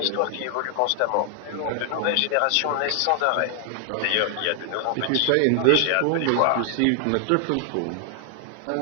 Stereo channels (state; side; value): different; both; correlation 0.00